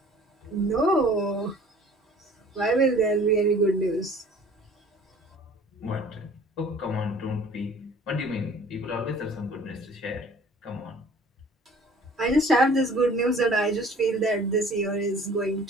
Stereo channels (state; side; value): normal; both; correlation 0.50